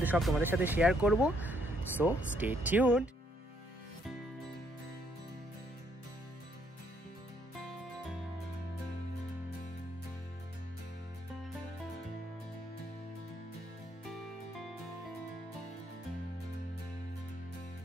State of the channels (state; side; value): normal; both; correlation 0.71